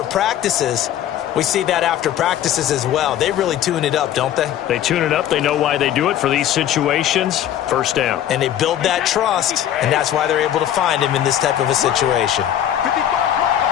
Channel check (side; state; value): right; quieter; 11.1 dB